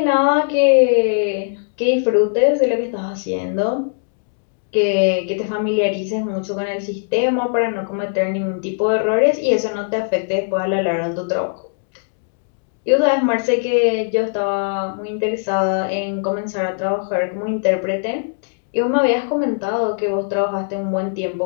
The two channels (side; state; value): right; silent; digital silence